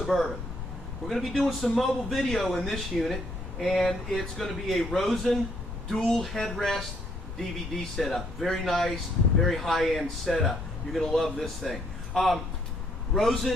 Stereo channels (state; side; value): noise; left; rumble, 8 dB below the sound